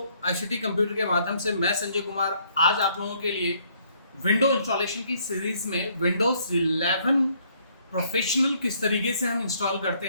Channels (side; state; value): both; inverted; correlation -0.66